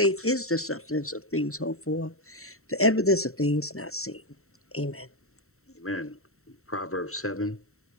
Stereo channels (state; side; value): late; right; 0.63 ms